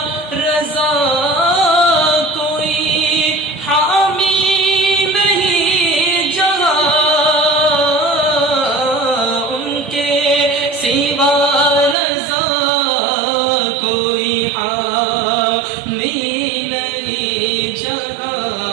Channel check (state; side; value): drops out; left; at 12.0 s